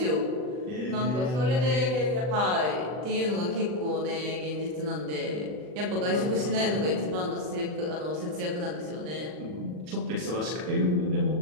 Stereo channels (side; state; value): left; late; 40 ms